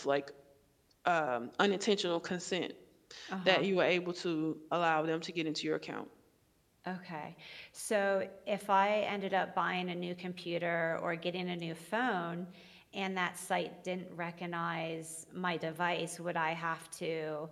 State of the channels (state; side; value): identical; both; correlation 1.00